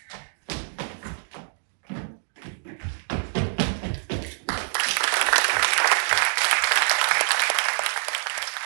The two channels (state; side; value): silent; left; digital silence